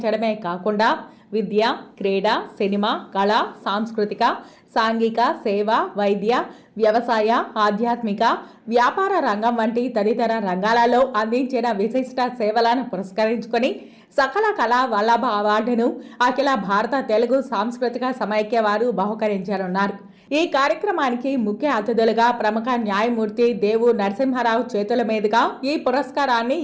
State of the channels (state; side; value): identical; both; correlation 1.00